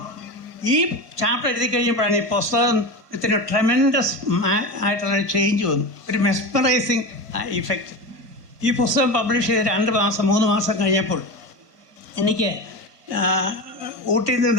ഈ ചാപ്റ്റർ എഴുതി കഴിഞ്ഞപ്പോഴാണ് ഈ പുസ്തകത്തിന് ട്രെമൻഡസ് ആയിട്ടുള്ള ചേഞ്ച് വന്നു, ഒരു മെസ്മറൈസിങ് ഇഫക്റ്റ്. ഈ പുസ്തകം പബ്ലിഷ് ചെയ്ത് 2-3 മാസം കഴിഞ്ഞപ്പോൾ എനിക്ക് ഊട്ടിയിൽ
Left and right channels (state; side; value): late; left; 1.2 ms